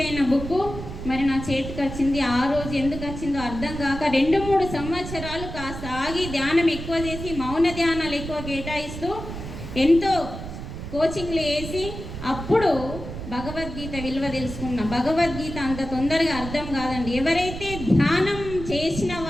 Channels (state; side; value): noise; right; rumble, 8 dB below the sound